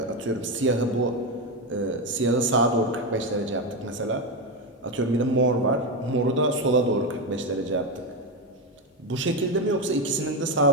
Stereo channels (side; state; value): both; normal; correlation 0.11